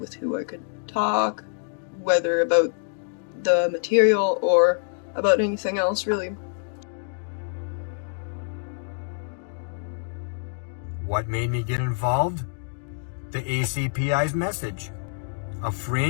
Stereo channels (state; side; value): silent; right; digital silence